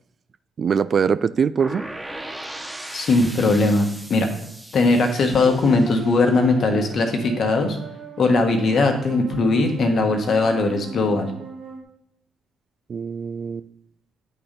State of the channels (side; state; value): both; normal; correlation 0.74